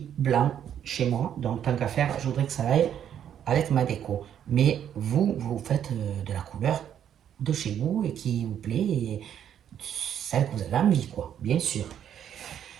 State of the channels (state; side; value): quieter; left; 9.6 dB